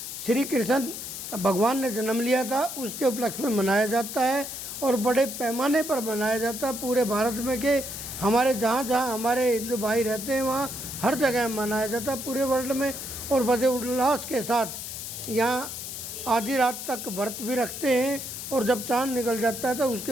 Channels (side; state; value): left; noise; hiss, 8 dB below the sound